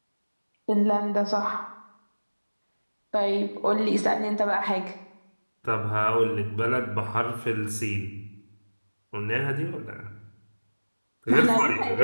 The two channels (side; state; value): both; inverted; correlation -1.00